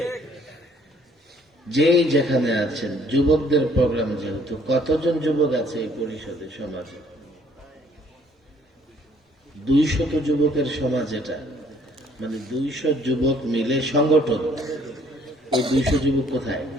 যেই যেখানে আছেন, যুবকদের প্রোগ্রাম যেহেতু, কতজন যুবক আছে এই পরিষদে, সমাজে 200 যুবকের সমাজ এটা, মানে 200 যুবক মিলে সংগঠন। ওই 200 যুবক কোথায়?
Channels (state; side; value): normal; both; correlation 0.62